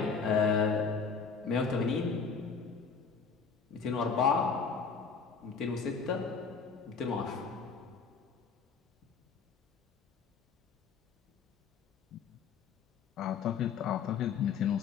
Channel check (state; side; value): quieter; right; 5.5 dB